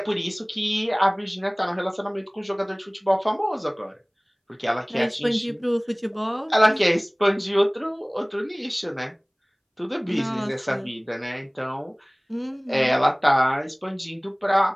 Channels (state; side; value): identical; both; correlation 1.00